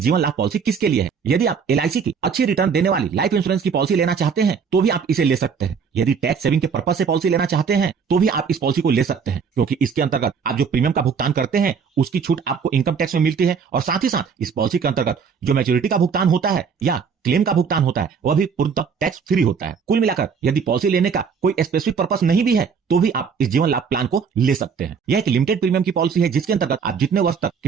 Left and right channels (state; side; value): quieter; left; 6.1 dB